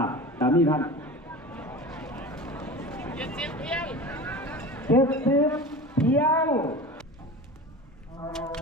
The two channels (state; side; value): normal; both; correlation 0.33